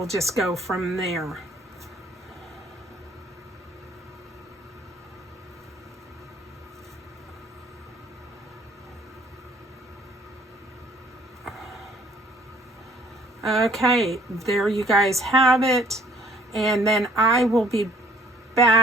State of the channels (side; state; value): both; normal; correlation 0.58